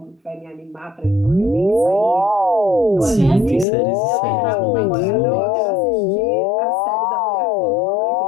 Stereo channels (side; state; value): right; drops out; at 3.7 s